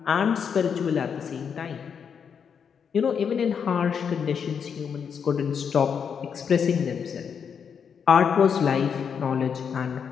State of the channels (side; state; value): right; quieter; 7.0 dB